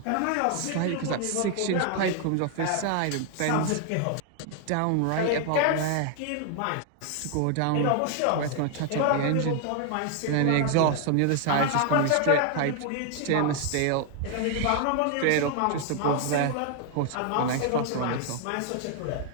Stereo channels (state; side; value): different; both; correlation 0.00